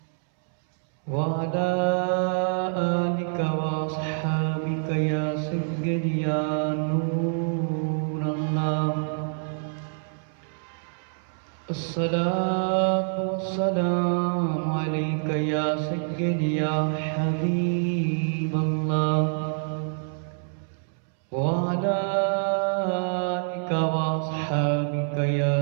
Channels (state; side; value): silent; left; 61 dB below the other